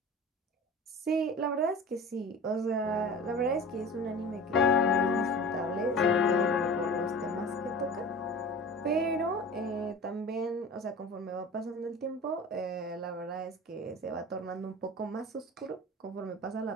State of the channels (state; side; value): normal; both; correlation 0.37